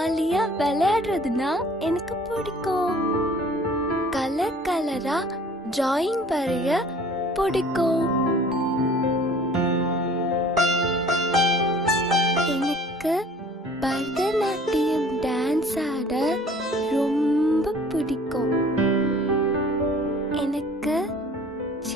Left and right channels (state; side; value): normal; both; correlation 0.51